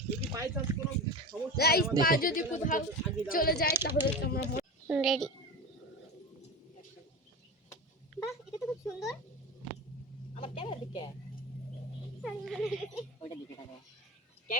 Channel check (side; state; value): both; normal; correlation 0.26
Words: যদি বাই চান্স কোনো সমস্যা গাইস পা যদি কোথাও চলে যায় তাহলে তোমরা রেডি। বাহ, এটা তো খুব সুন্দর। আমার ক্যামেরার দিকে ওইটা দিকে তাকাও,